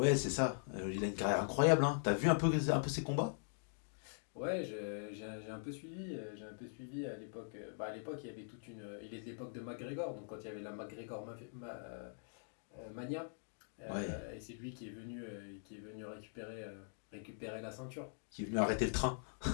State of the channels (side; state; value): right; silent; digital silence